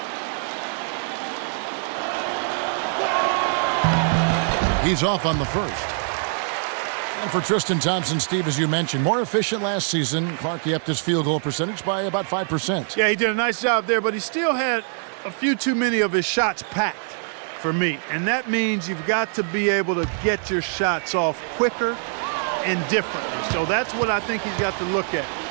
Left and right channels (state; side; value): silent; left; 57 dB below the other